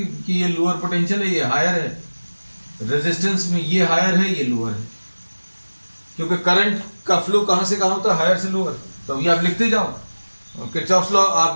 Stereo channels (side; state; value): both; inverted; correlation -1.00